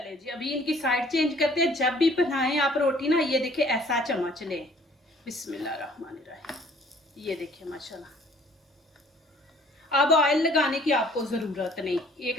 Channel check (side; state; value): both; normal; correlation 0.56